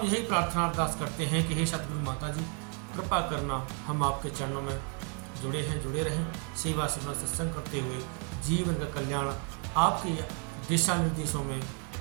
यही प्रार्थना अरदास करते हैं कि हे सतगुरु माता जी, कृपा करना, हम आपके चरणों में जुड़े हैं, जुड़े रहें, सेवा सुनना सत्संग करते हुए जीवन का कल्याण आपके दिशा निर्देशों में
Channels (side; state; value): left; quieter; 39.7 dB